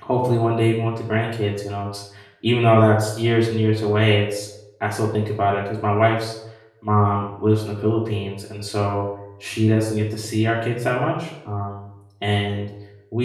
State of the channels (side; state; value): both; identical; correlation 1.00